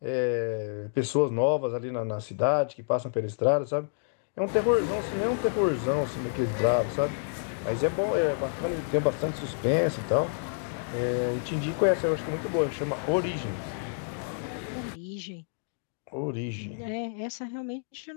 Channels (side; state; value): right; silent; digital silence